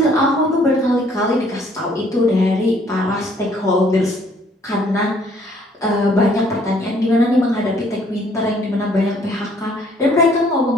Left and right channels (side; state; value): both; normal; correlation 0.62